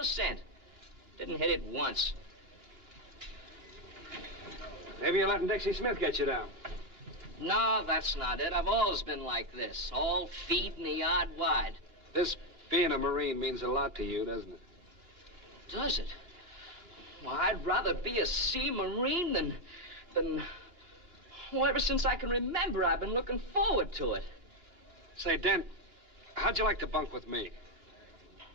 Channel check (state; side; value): late; left; 2.9 ms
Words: Didn't hit it once. Maybe you're letting Dixie Smith get you down. No, that's not it. I've always been like this. All feet in the yard wide. This being a Marine means a lot to you, doesn't it? Does it? Well, I'd rather be a sea Marine than... Well, ever since I can remember, I've been looking forward to it. Say, Dent, how'd you like to bunk with me?